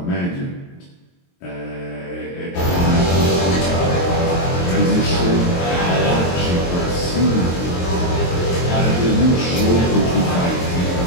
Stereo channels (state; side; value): late; right; 22 ms